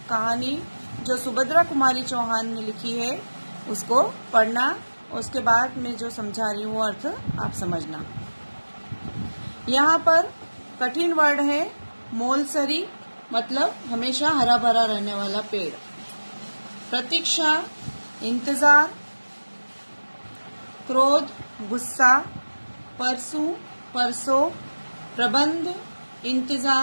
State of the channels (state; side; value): inverted; both; correlation -1.00